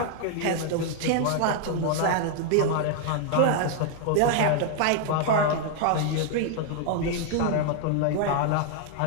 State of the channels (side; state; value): both; different; correlation 0.00